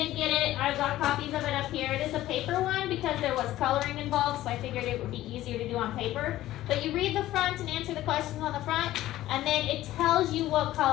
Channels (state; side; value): quieter; right; 14.9 dB